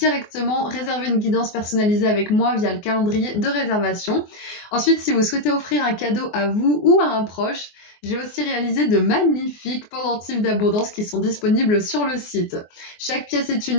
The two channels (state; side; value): late; right; 24 ms